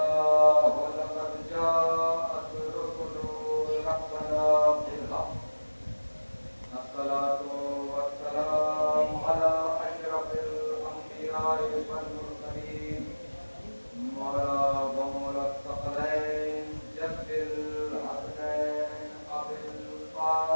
لقد جاءت رسل ربنا بالحق الصلاة والسلام على أشرف الأنبياء والمرسلين مولا ومولا الثقلين جد الحسنين أبي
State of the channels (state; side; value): inverted; both; correlation -1.00